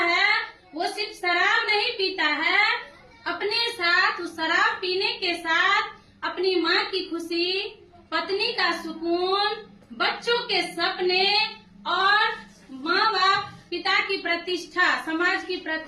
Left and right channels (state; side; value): identical; both; correlation 1.00